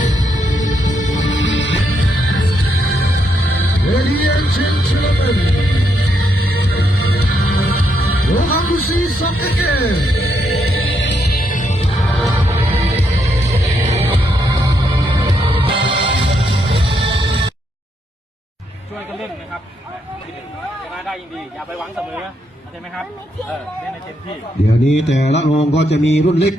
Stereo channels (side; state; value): both; normal; correlation 0.78